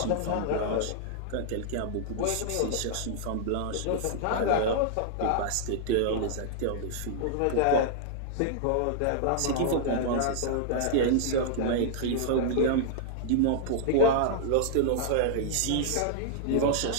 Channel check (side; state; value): both; different; correlation -0.01